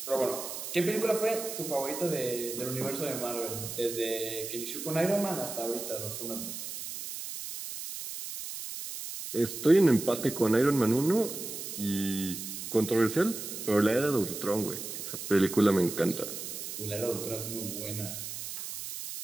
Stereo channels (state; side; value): noise; right; hiss, 7 dB below the sound